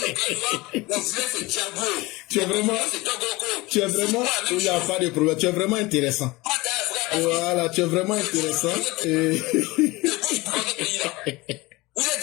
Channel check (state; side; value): quieter; right; 21.7 dB